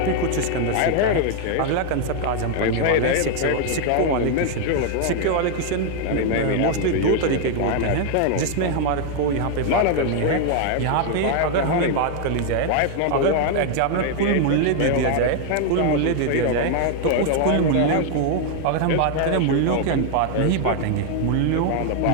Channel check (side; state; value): both; different; correlation 0.00